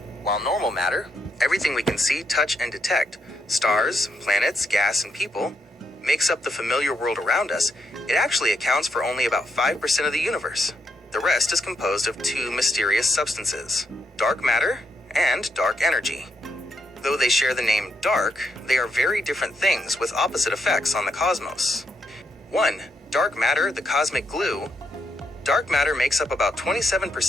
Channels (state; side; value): normal; both; correlation 0.79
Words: While normal matter, everything we can see, touch, and detect, stars, planets, gas, and people, makes up the familiar world around us, it actually accounts for only about 5% of the universe. The rest is composed of two mysterious substances, dark matter and dark energy. Though they share the name dark, they are very different things with opposite effects on the cosmos. 1. Dark matter, the cosmic glue. Dark matter makes up about